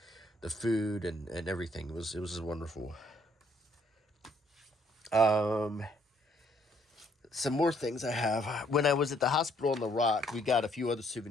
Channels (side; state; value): both; normal; correlation 0.67